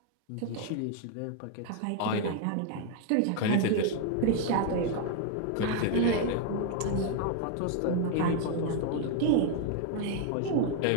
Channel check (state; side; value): different; both; correlation 0.00